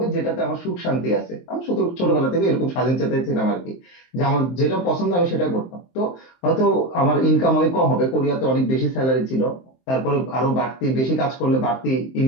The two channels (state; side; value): late; right; 23 ms